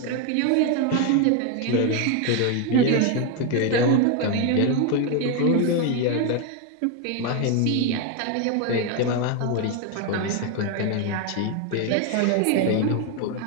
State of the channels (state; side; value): different; both; correlation 0.01